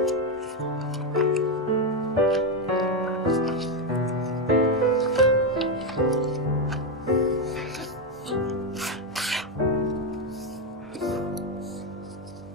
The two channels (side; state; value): both; normal; correlation 0.06